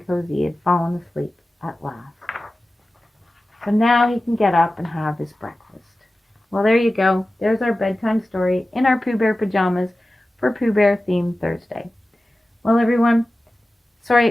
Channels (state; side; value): normal; both; correlation 0.95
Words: cozy he had fallen asleep at last. So now he can get up and have his breakfast. Well, there you go. There's our bedtime story in our Pooh Bear pajamas for Pooh Bear themed Thursday. Well, everyone, sorry